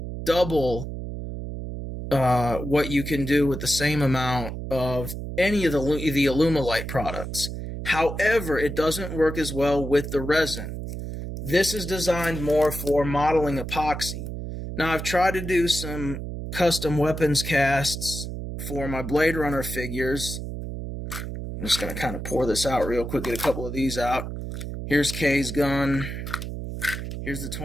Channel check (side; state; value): right; noise; hum, 7 dB below the sound